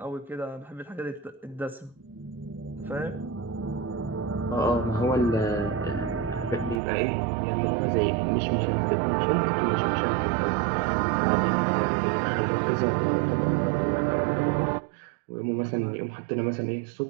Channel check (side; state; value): left; drops out; at 6.8 s